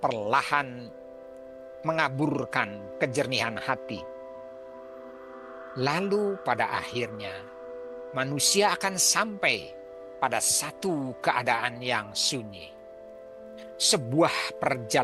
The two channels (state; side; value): identical; both; correlation 1.00